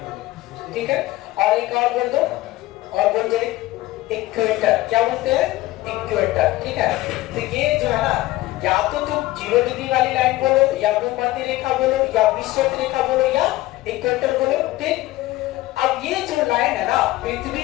ठीक है। और एक और बोल दो। और बोल दो इक्वेटर। क्या बोलते हैं? इक्वेटर। ठीक है। तो ये जो है ना या तो तुम 0 डिग्री वाली लाइन बोलो या भूमध्य रेखा बोलो या विषुवत रेखा बोलो या इक्वेटर बोलो। ठीक। अब ये जो लाइन है ना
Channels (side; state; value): right; quieter; 17.5 dB